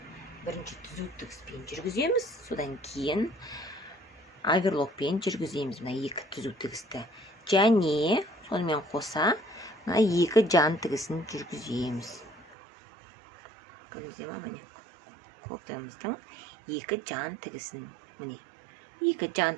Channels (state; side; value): drops out; left; at 12.6 s